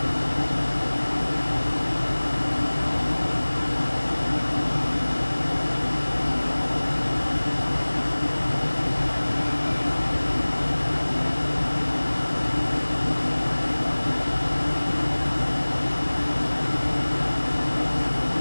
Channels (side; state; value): both; inverted; correlation -1.00